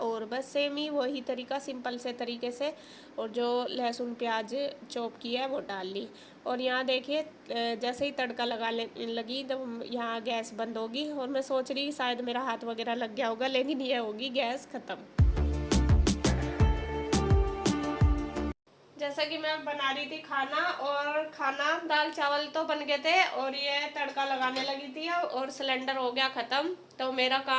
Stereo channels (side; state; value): both; identical; correlation 1.00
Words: बस सेम ही वही तरीका, सिंपल से तरीके से। और जो लहसुन प्याज चॉप किया है वो डाल ली। और यहाँ देखिए जैसे ही तड़का लगी तो यहाँ गैस बंद होगी। और मैं सोच रही शायद मेरा हाथ वगैरह लग गया होगा, लेकिन ये होगी गैस ख़त्म। जैसा कि मैं बना रही थी खाना, और खाना दाल चावल तो बन गए थे और ये तड़का लगाने लगी थी, और सिलेंडर हो गया ख़त्म। तो मेरा